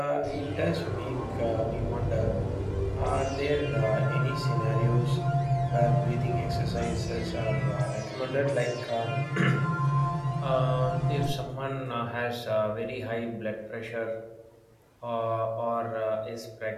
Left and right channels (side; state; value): both; identical; correlation 1.00